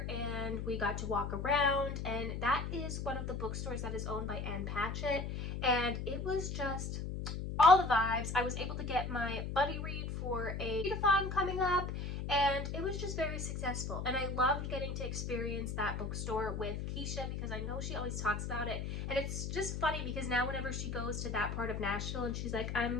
and we got to walk around, and that is one of the bookstores that is owned by Ann Patchett, and it was just all the vibes. I was able to get my buddy read for a readathon coming up, and it was just very successful, and I loved getting to experience that bookstore with Keisha because I know she always talks about it, and it's just funny because now whenever she goes to that part of Nashville and she's like,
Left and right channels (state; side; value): noise; left; hum, 4 dB below the sound